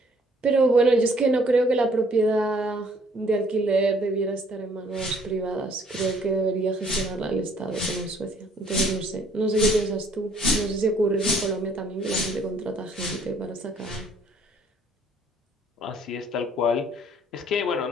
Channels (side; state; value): both; normal; correlation 0.61